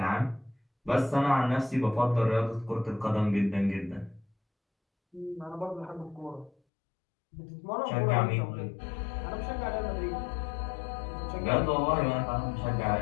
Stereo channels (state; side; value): drops out; right; at 6.5 s